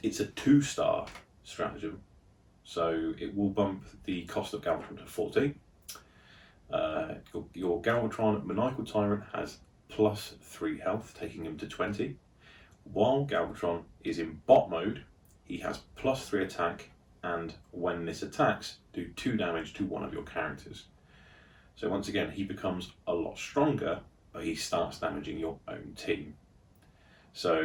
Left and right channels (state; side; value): identical; both; correlation 1.00